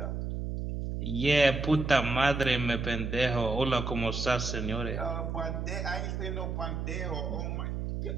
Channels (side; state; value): right; noise; hum, 3 dB below the sound